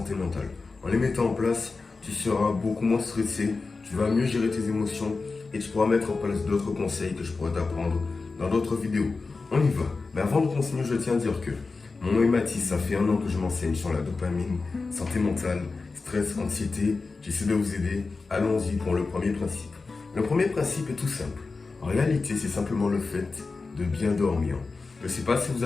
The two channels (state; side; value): quieter; right; 4.1 dB